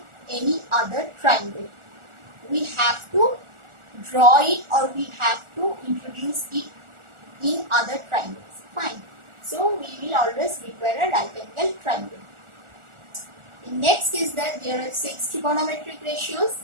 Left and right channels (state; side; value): late; left; 1.4 ms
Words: any other triangle. We have to draw it or we have to introduce it in other triangles. Fine. So we will always require a right angle triangle. The next is that there are 6 trigonometric ratios: